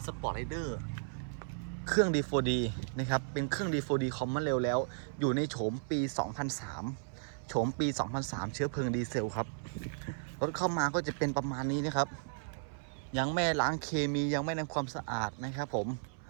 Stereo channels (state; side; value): silent; left; 55 dB below the other